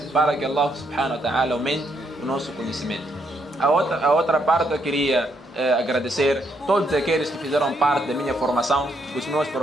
para que Allah subhanahu wa ta'ala aumente o nosso conhecimento. A outra parte eu queria agradecer todos aqueles que fizeram parte da minha formação, os meus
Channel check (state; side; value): normal; both; correlation 0.75